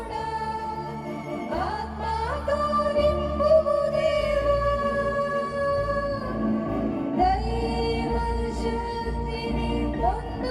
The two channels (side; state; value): both; identical; correlation 1.00